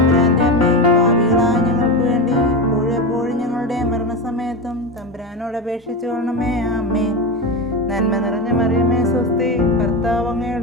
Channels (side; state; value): both; normal; correlation 0.18